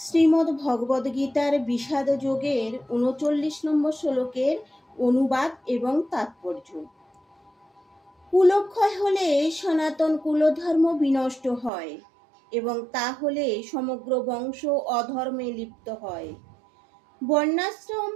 ভগবদ গীতার বিষাদ যোগের ৩৯ নম্বর শ্লোকের অনুবাদ এবং তাৎপর্য। কুলক্ষয় হলে সনাতন কুলধর্ম বিনষ্ট হয় এবং তা হলে সমগ্র বংশ অধর্মে লিপ্ত হয়। বর্ণাশ্রম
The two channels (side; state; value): left; drops out; at 11.7 s